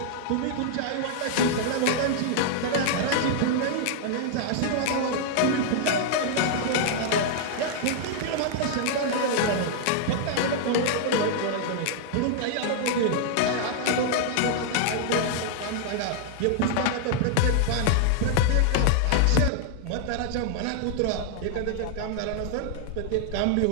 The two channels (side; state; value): both; different; correlation -0.01